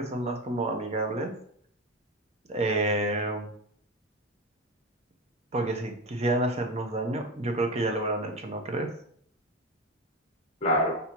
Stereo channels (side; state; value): both; normal; correlation 0.19